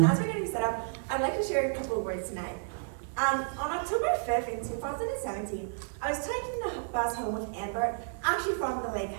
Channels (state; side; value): silent; left; digital silence